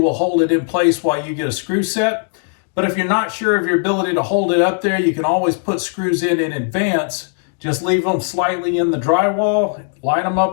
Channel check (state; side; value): silent; right; digital silence